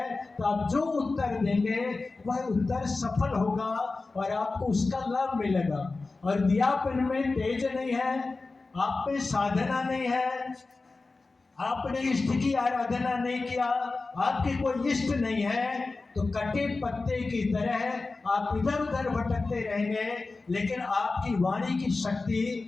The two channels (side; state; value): right; quieter; 3.7 dB